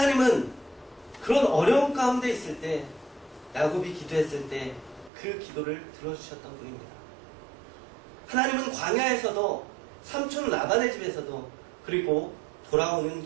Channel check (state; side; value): drops out; left; at 5.1 s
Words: 그런 어려움 가운데 있을 때, 야곱이 기도했을 때 그 기도를 들어주셨던 분입니다. 하나님은 광야에서도, 삼촌 라반의 집에서도, 그리고 돌아오는